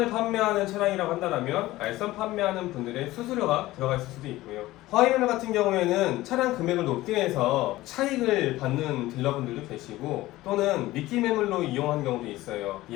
판매하는 차량이라고 한다면 알선 판매하는 분들의 수수료가 들어가 있을 수도 있고요. 화이매매 같은 경우에는 차량 금액을 높게 해서 차익을 받는 딜러분들도 계시고, 또는 미끼 매물로 이용하는 경우도 있어요.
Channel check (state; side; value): quieter; right; 17.2 dB